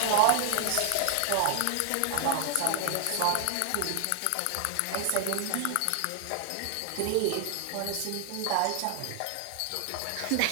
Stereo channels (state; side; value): different; both; correlation 0.00